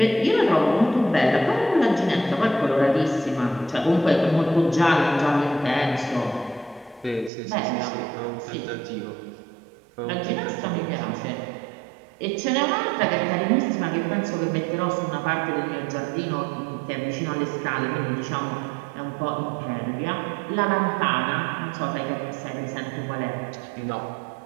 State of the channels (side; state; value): left; drops out; at 7.3 s